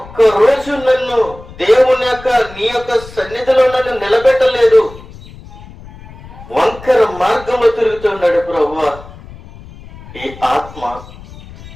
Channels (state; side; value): noise; left; rumble, 18 dB below the sound